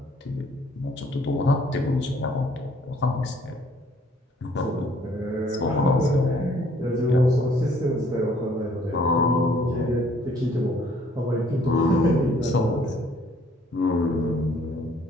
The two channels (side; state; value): both; normal; correlation 0.60